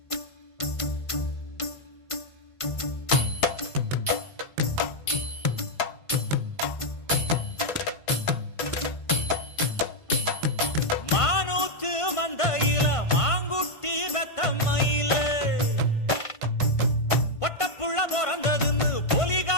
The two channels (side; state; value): right; late; 1.5 ms